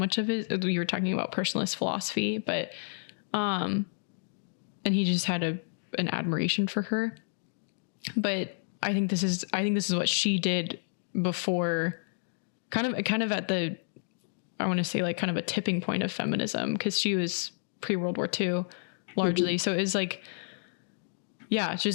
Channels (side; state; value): right; silent; digital silence